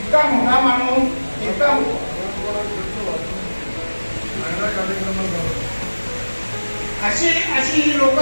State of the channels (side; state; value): both; inverted; correlation -1.00